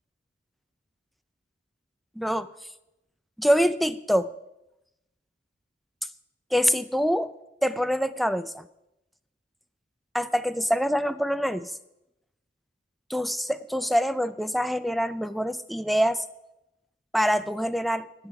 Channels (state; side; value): normal; both; correlation 0.95